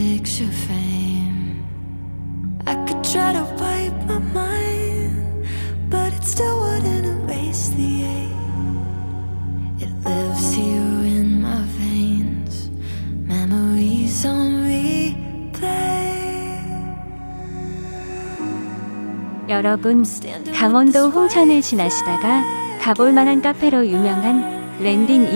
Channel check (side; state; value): both; inverted; correlation -1.00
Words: frame. I could try to wipe my mind, but it still wouldn't erase the ache. It lives here in my veins, memories on replay. 여러분, 강원도 홍천을 지나시다가 가볼 만한 카페로 유명한 랜딩